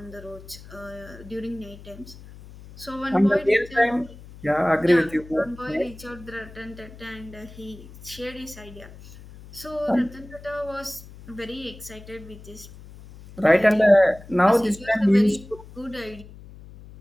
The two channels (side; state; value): left; noise; hum, 18 dB below the sound